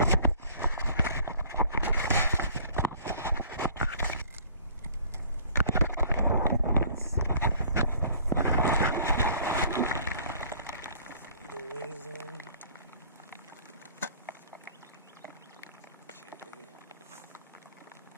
The wings on.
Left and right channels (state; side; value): inverted; both; correlation -0.53